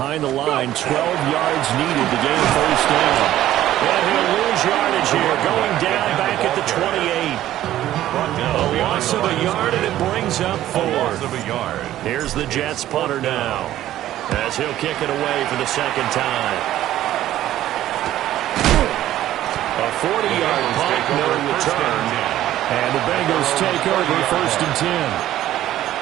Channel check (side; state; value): left; quieter; 13.3 dB